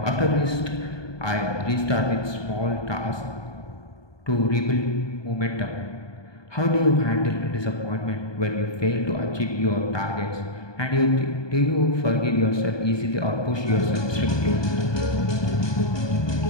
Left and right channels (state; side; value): late; right; 1.2 ms